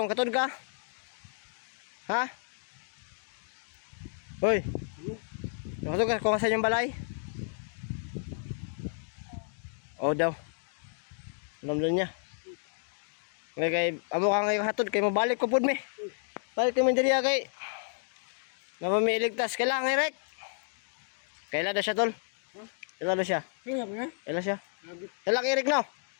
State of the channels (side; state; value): right; silent; digital silence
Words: Katod ka? Ha? Hoy. Katod ka kung asan yung balay? O daw. Alam doon niya. Kay amo ka ngayon hatod kay mabalik ko pud mi. Balik kami diri kay. Napamiligtas kailangan Eric. Kailan na siya tol? Kailan na siya? Kailan siya? Kailan Eric no?